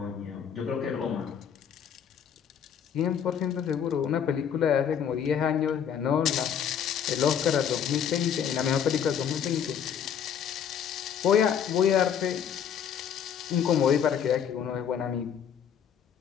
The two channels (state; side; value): quieter; right; 8.3 dB